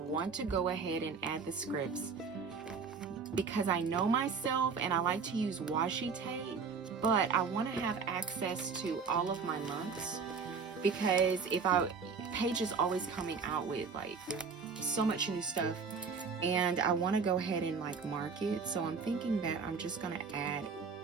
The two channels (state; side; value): quieter; left; 5.4 dB